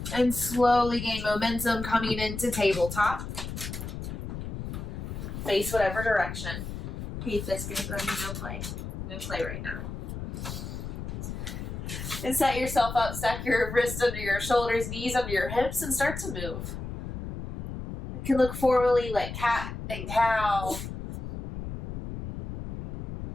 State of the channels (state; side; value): noise; left; rumble, 7 dB below the sound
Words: And slowly gain momentum coming into tabletop. Face whatever direction. Hey, fist gonna no play. No play right now. And set yourself up, stack your wrists under your shoulders, knees under your hips, and start to move. It can look formally like cat and cow.